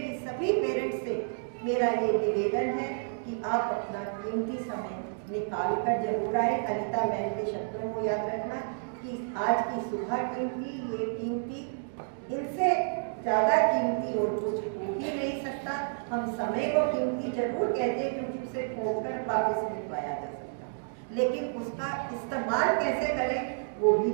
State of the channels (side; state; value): left; silent; digital silence